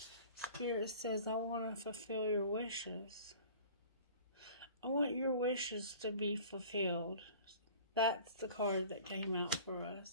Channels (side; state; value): both; inverted; correlation -0.45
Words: Spirit says, I want to fulfill your wishes. I want your wishes to be fulfilled. That's the card that came out for